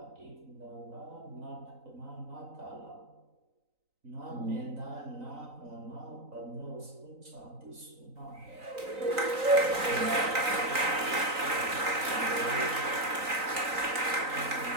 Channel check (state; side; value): late; left; 3.9 ms